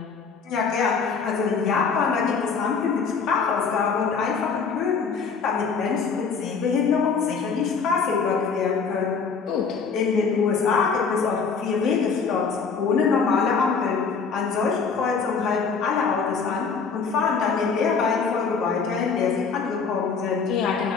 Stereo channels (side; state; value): right; quieter; 5.5 dB